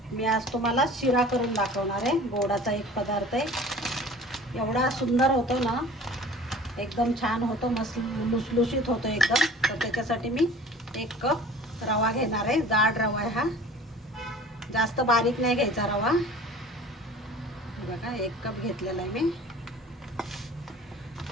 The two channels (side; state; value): both; normal; correlation 0.45